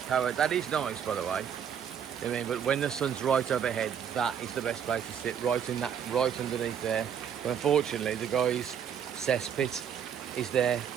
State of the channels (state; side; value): quieter; left; 8.2 dB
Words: power. That is nice, by the way. I mean, but when the sun's right overhead, that is the best place to sit, right underneath there. But unfortunately, the guy's cesspit is there,